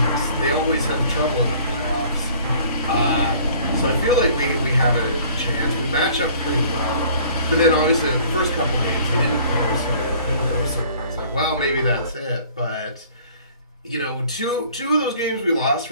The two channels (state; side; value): inverted; both; correlation -0.53